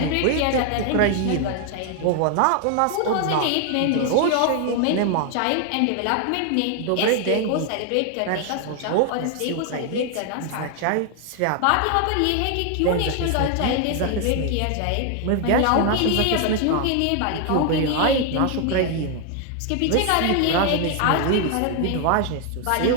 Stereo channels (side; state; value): both; different; correlation 0.00